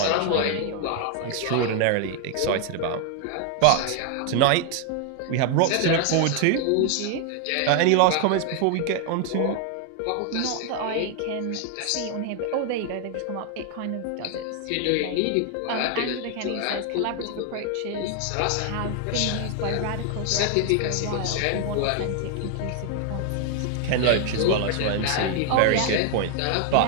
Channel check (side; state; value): both; different; correlation 0.00